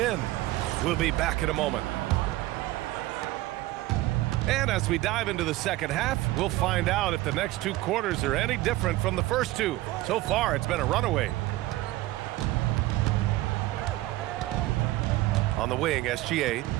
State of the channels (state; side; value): quieter; left; 17.5 dB